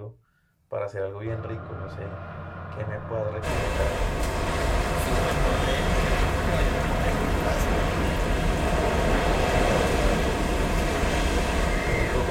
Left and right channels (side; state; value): both; identical; correlation 1.00